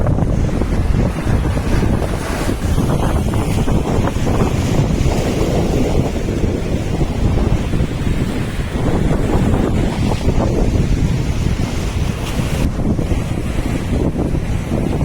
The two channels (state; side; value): identical; both; correlation 1.00